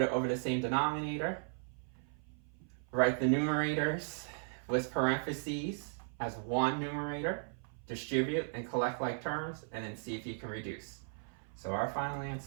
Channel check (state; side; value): silent; left; 53 dB below the other